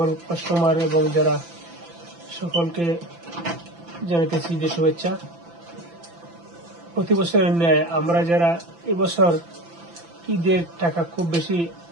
কাস্টমার এবং যারা সকলকে জানাইতেছি ঈদের শুভেচ্ছা। প্রতি বছরের ন্যায় আমরা যারা এবছর ঈদের টাকা খুব বেশি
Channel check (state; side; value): late; left; 5.9 ms